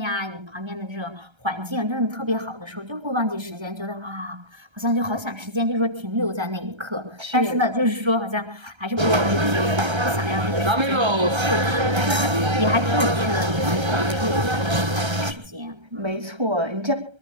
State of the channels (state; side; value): late; left; 1.3 ms